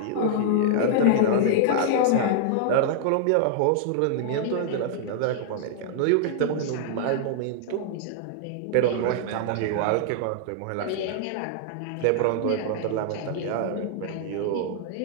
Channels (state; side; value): different; both; correlation -0.01